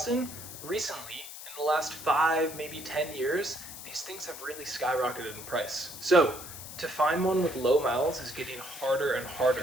recently, in the last 5, maybe 10 years, these things have really skyrocketed in price. So, to find one with low miles is getting harder and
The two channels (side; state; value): left; noise; hiss, 12 dB below the sound